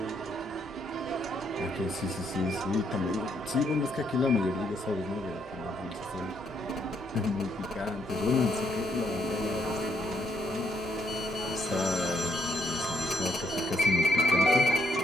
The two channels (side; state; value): both; normal; correlation 0.71